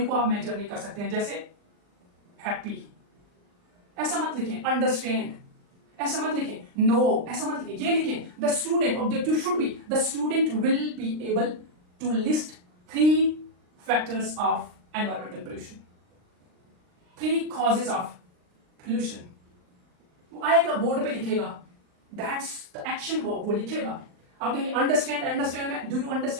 को आप मेजर नहीं कर सकते हैं, जैसे हैप्पी, ऐसा मत लिखें। अंडरस्टैंड, ऐसा मत लिखें, नो ऐसा मत लिखें, ये लिखें the student, objective should be the student will be able to list 3 factors of environmental pollution, 3 causes of pollution. वो आएगा बोर्ड पे लिखेगा, दैट्स द एक्शन, वो लिखेगा। आप कहेंगे अंडरस्टैंड, अंडरस्टैंड में do you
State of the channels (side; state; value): left; late; 39 ms